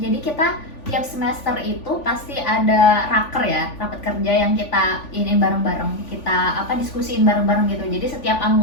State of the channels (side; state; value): right; late; 3.5 ms